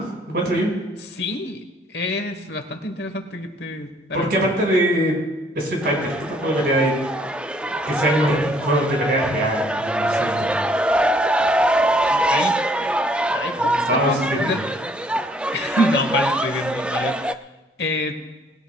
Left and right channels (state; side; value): normal; both; correlation 0.63